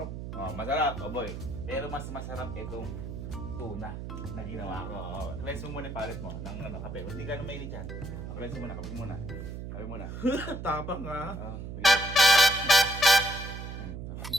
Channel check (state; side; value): noise; right; hum, 7 dB below the sound